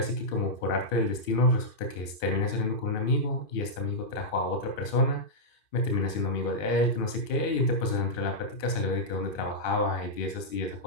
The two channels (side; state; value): right; late; 2.5 ms